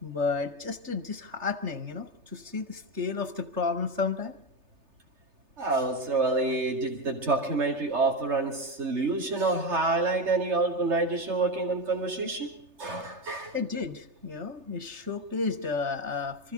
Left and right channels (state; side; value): late; left; 3.3 ms